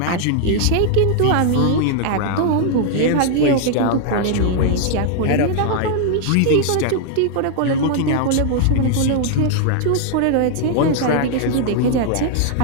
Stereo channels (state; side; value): different; both; correlation 0.00